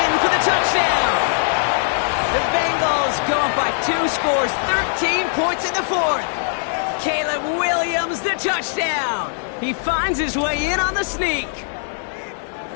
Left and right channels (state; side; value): silent; right; digital silence